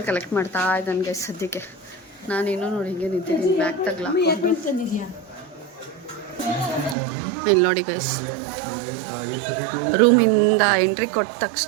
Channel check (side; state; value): left; drops out; at 7.0 s